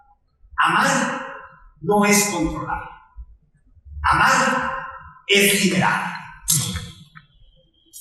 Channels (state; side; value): identical; both; correlation 1.00